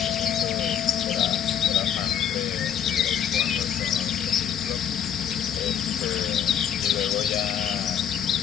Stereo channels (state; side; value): quieter; right; 9.1 dB